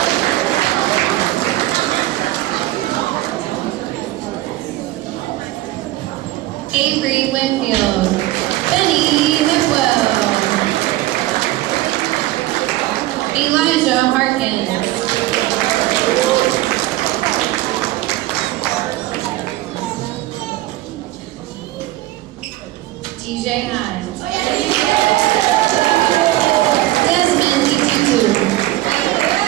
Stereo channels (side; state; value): left; quieter; 16.6 dB